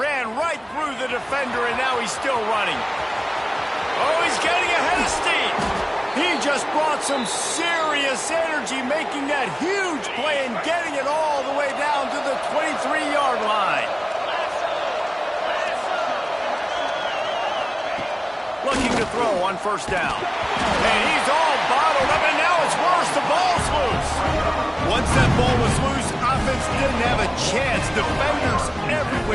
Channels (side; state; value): both; identical; correlation 1.00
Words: right through the defender, and now he's still running. Oh, he's getting ahead of steam. He just brought some serious energy, making that huge play and getting it all the way down to the 23-yard line. Looking to throw on first down. And he's all bottled up, and now it's worse. The ball's loose. Once that ball was loose, offense didn't have a chance. Defenders